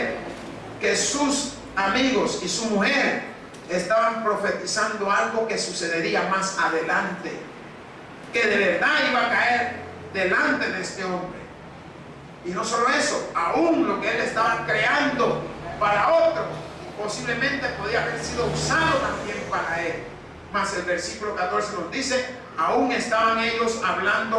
que sus amigos y su mujer estaban profetizando algo que sucedería más adelante, que de verdad iba a caer delante de este hombre. Y no solo eso, aún lo que él estaba creando para otro posiblemente podía haber sido usado también para él. Mas el versículo 14 nos dice: aún estaban ellos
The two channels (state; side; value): identical; both; correlation 1.00